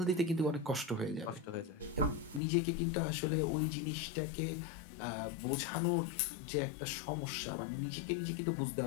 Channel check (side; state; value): right; drops out; at 2.4 s